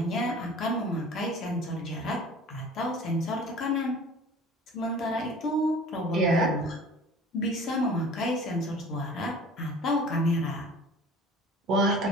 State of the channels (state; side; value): normal; both; correlation 0.44